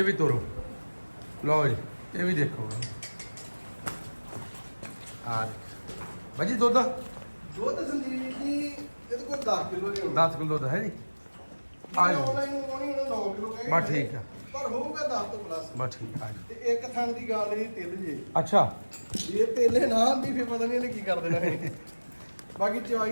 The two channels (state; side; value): inverted; both; correlation -1.00